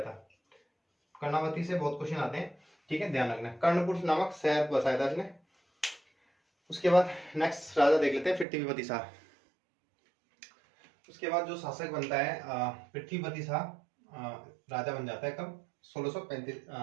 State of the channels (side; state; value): left; drops out; at 8.5 s